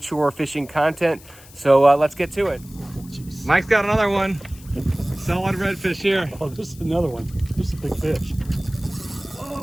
fishing content. So let's get to it. Jeez. Mike's got another one. Solid redfish here. Oh, this is another one. This is a big fish.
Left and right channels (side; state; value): left; noise; hiss, 22 dB below the sound